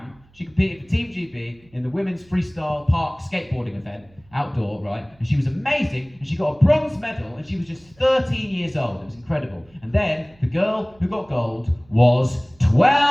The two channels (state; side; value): noise; right; hum, 29 dB below the sound